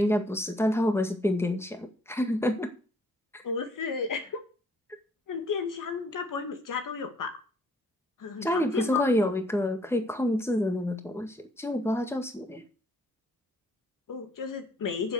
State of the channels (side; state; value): both; normal; correlation 0.65